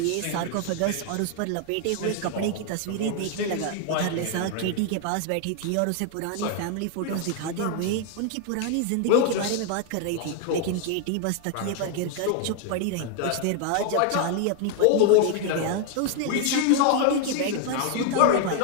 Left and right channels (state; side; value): different; both; correlation 0.00